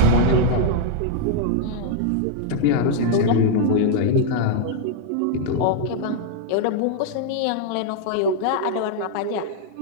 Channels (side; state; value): both; different; correlation -0.01